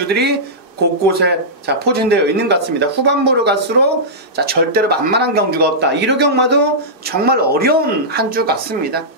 곳곳에 자, 포진되어 있는 것 같습니다. 후반부로 갈수록 자, 절대로 만만한 경주가 없다. 1호 경마도 정말 어려운 한 주 같습니다.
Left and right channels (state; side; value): late; right; 2.6 ms